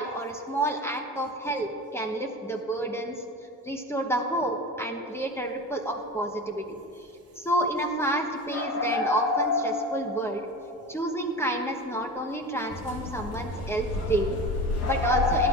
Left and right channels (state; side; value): normal; both; correlation 0.30